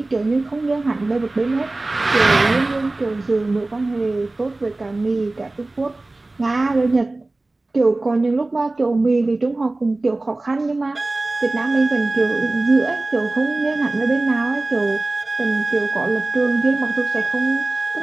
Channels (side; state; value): left; quieter; 3.0 dB